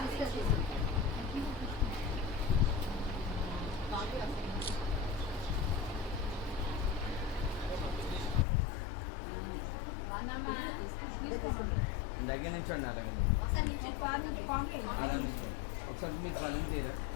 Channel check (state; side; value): drops out; right; at 8.5 s